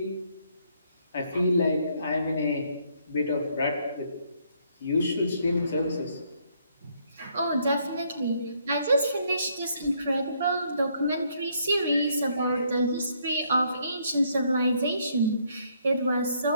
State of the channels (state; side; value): inverted; both; correlation -0.69